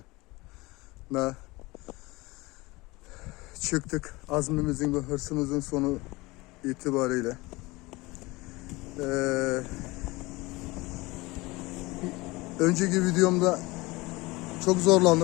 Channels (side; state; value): right; quieter; 22.4 dB